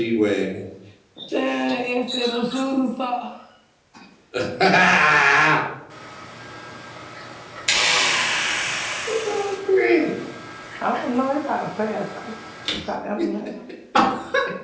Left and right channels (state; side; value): identical; both; correlation 1.00